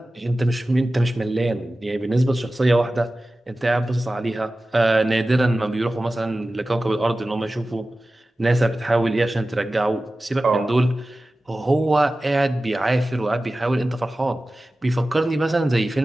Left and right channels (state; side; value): normal; both; correlation 0.96